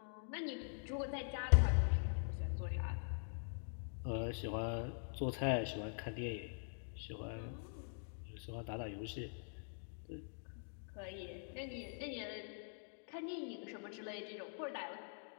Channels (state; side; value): silent; right; digital silence